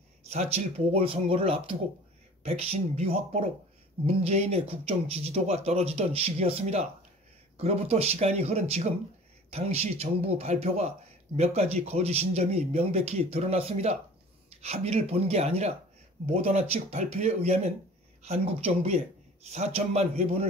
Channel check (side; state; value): both; normal; correlation 0.44